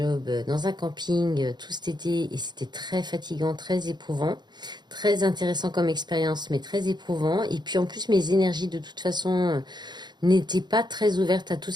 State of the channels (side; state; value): left; late; 0.21 ms